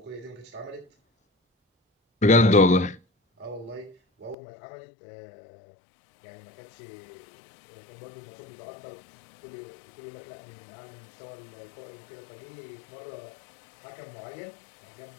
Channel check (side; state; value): right; drops out; at 4.4 s